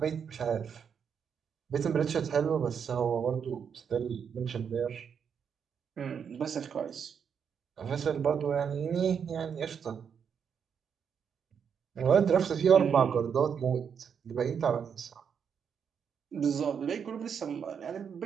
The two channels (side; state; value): left; quieter; 7.2 dB